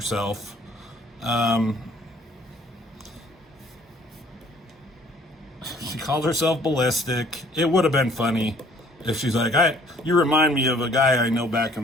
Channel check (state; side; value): normal; both; correlation 0.57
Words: She called herself Ballistic. It would have been funny if she's like, you remind me of a guy I know back